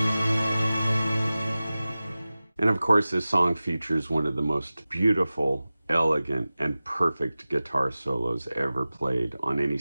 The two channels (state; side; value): inverted; both; correlation -0.97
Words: And of course, this song features one of the most beautiful, elegant, and perfect guitar solos ever played on any